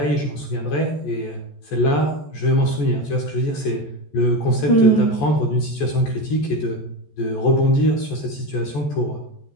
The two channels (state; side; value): late; right; 14 ms